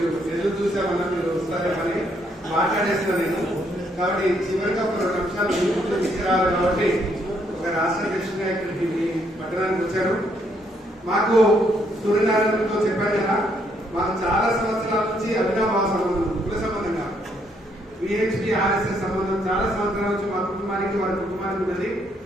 ఎదురు చూసామన్నా మీరు వస్తారేమని మాట్లాడేసిన నేను. కాబట్టి చివరిగా ఒక 2 నిమిషాలు ముందు తీసుకురావాలి. కాబట్టి ఒక రాష్ట్ర అధ్యక్షుడిగా ఇక్కడికి మీ పట్టణానికి వచ్చారు. మాకు సూర్యనారాయణతో చెప్పాను కదా, మాకు చాలా సంవత్సరాల నుంచి అవినాభావ సంబంధం, కుల సంబంధంగా విహెచ్పి ఆర్ఎస్ఎస్ సంబంధం చాలా సంవత్సరాల నుంచి మా కుటుంబానికి వారి కుటుంబానికి ఉన్నది.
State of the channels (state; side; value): normal; both; correlation 0.72